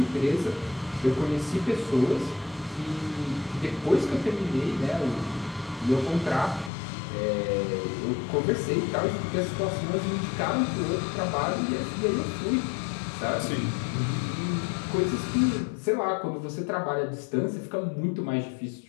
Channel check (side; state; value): right; drops out; at 6.7 s